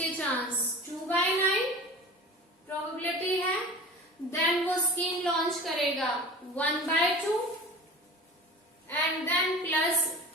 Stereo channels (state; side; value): normal; both; correlation 0.37